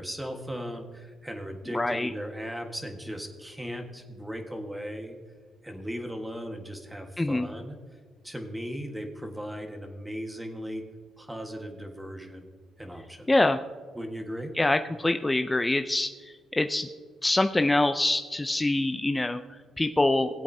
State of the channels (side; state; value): both; normal; correlation 0.97